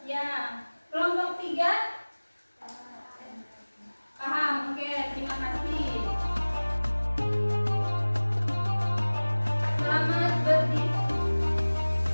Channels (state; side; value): inverted; both; correlation -1.00